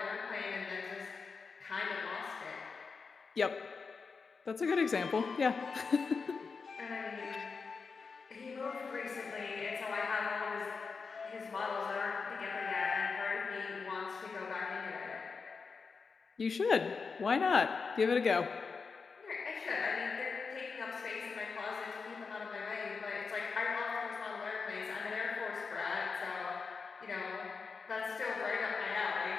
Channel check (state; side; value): quieter; right; 5.0 dB